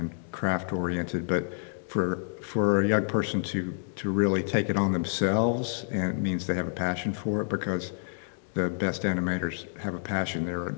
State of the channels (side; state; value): right; silent; digital silence